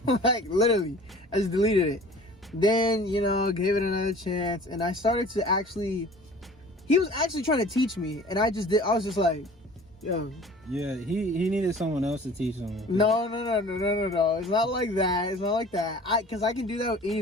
Like literally, I just deleted it. Then, you know, gave it another chance, and I started to he was actually trying to teach me, and I was just like, yo. Yeah, he needed someone else to teach him. No. It's not like that. Because I can do that with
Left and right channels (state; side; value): normal; both; correlation 0.46